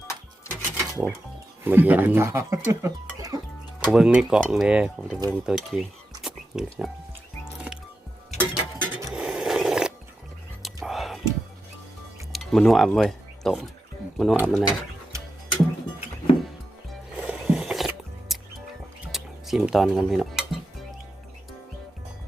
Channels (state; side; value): normal; both; correlation 0.89